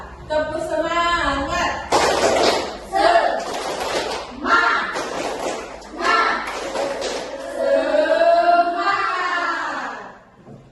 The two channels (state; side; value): identical; both; correlation 1.00